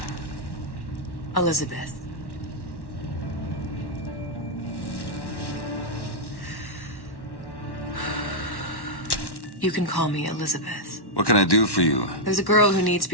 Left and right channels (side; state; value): right; late; 1.1 ms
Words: Elizabeth. You can call me Elizabeth. What can I do for you? There's a girl who needs to